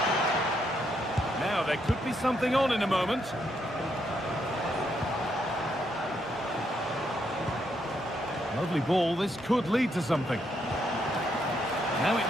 There could be something on in a moment. Lovely ball. This could lead to something. Now it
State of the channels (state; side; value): normal; both; correlation 0.77